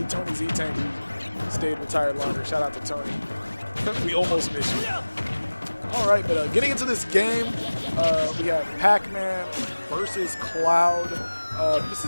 Tony Z-Tank who stayed retired longer. Shout out to Tony. We almost missed you. All right, but getting into this game, we have Pac-Man versus Cloud. This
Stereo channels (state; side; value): inverted; both; correlation -1.00